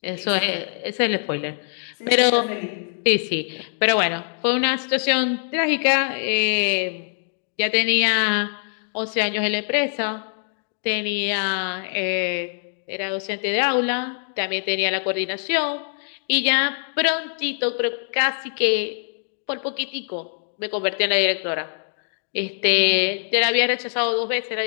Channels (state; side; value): silent; right; digital silence